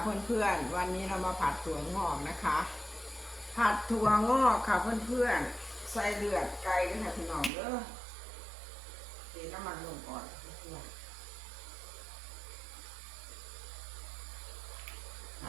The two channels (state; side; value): drops out; left; at 7.5 s